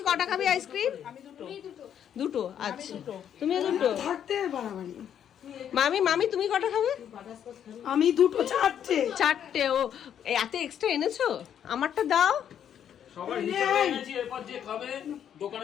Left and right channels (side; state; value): right; quieter; 9.3 dB